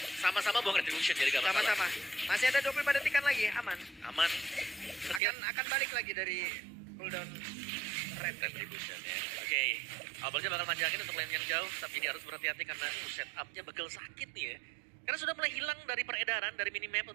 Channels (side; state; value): left; drops out; at 5.2 s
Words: Sama-sama buang retribution jadi gak masalah. Sama-sama. Masih ada 25 detikan lagi, aman. Aman. Akan balik lagi dari cooldown red. Retribution ya. Oke, Albertnya bakal manjangin untuk lane yang jauh, tapi dia harus berhati-hati karena setupnya bakal sakit nih ya. Karena sudah mulai hilang dari peredaran, dari minimap